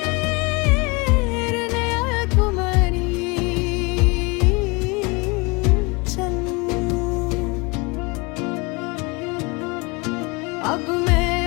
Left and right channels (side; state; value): right; quieter; 27.9 dB